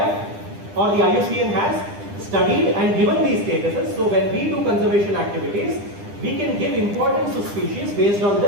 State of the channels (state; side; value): late; left; 10 ms